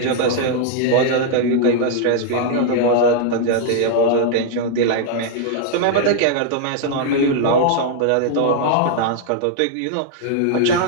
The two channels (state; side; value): different; both; correlation -0.01